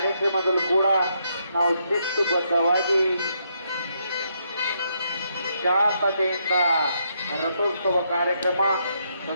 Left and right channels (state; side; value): inverted; both; correlation -0.77